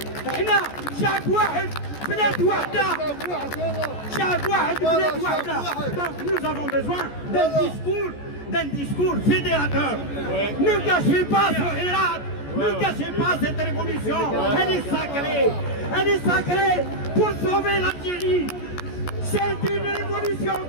هنا شعب واحد بلاد واحدة. شعب واحد بلاد واحدة. Donc nous avons besoin d'un discours fédérateur. Ne gâchez pas ce Hirat. Ne gâchez pas cette révolution. Elle est sacrée. Elle est sacrée pour sauver l'Algérie. C'est une révolution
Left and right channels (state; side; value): late; right; 14 ms